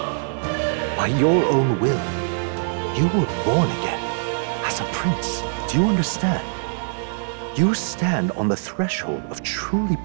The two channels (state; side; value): silent; left; digital silence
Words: By your own will, you were born again as a prince. Do you understand? You stand on the threshold of truly